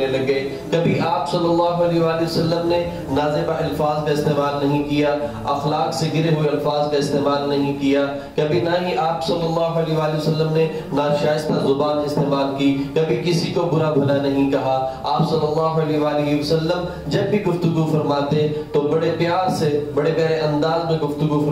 لگے۔ کبھی آپ صلی اللہ علیہ وآلہ وسلم نے نازیبہ الفاظ کا استعمال نہیں کیا، اخلاق سے گرے ہوئے الفاظ کا استعمال نہیں کیا، کبھی نہ ہی آپ صلی اللہ علیہ وآلہ وسلم نے ناشائستہ زبان استعمال کی، کبھی کسی کو برا بھلا نہیں کہا۔ آپ صلی اللہ علیہ وآلہ وسلم جب بھی گفتگو فرماتے تو بڑے پیار سے، بڑے پیارے انداز میں گفتگو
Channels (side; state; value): both; identical; correlation 1.00